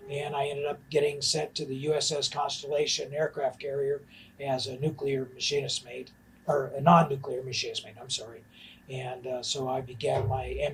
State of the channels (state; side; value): identical; both; correlation 1.00